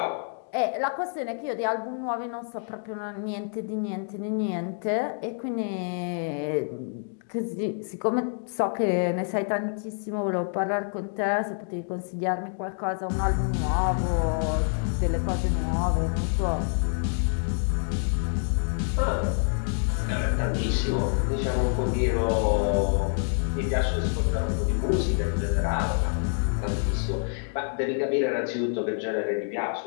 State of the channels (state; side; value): silent; right; 60 dB below the other